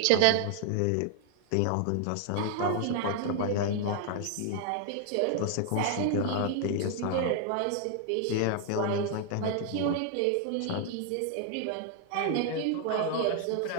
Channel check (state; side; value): different; both; correlation 0.00